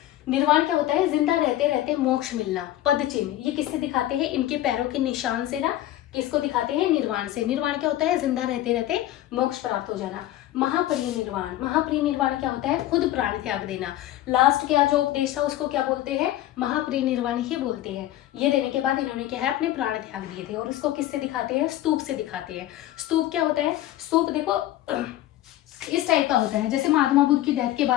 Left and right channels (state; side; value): quieter; right; 14.0 dB